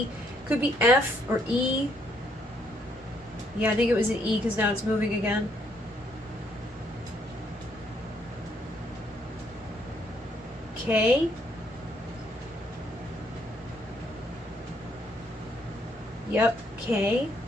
could be F or E. Yeah, I think it was an E because now it's moving again. K. Yep, K.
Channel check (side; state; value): both; normal; correlation 0.70